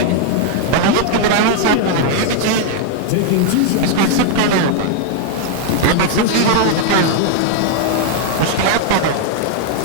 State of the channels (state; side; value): different; both; correlation 0.00